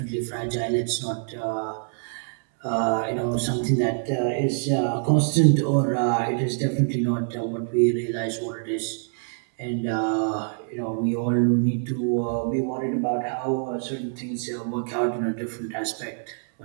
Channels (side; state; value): left; silent; 62 dB below the other